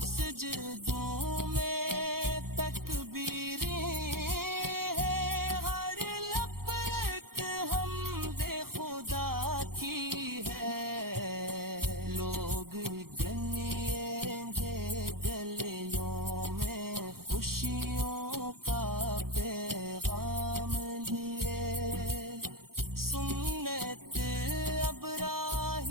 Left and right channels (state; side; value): late; left; 0.93 ms